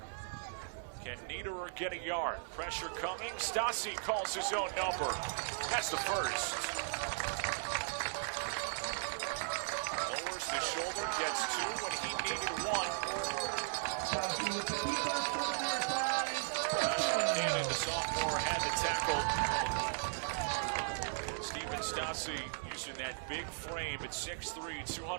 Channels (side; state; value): left; silent; digital silence